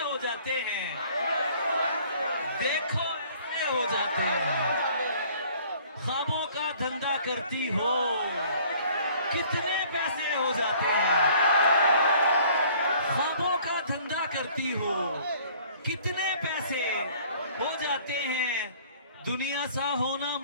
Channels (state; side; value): inverted; both; correlation -0.55